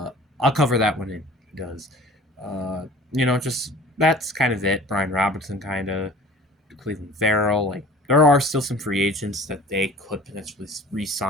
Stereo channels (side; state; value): both; normal; correlation 0.44